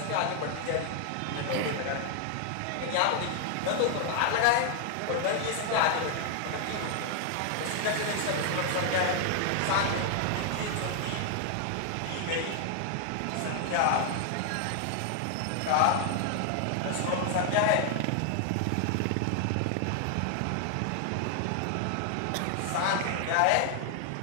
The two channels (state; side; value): different; both; correlation 0.00